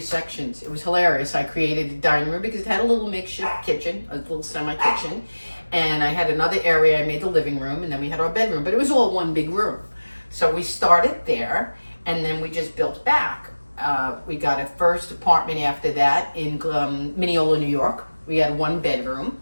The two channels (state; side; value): inverted; both; correlation -1.00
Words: It was hilarious. I created a dining room because it had a little makeshift kitchen, a little semi-kitchen, and I had another area. I made the living room, and then we had our bedroom, but it was all one big room. So we started there, and then we just built back. We got a first apartment after that in Mineola, New York. We had 1 bedroom,